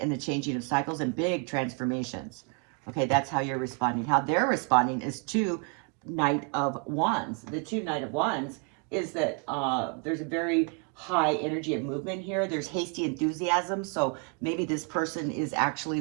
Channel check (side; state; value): left; quieter; 33.5 dB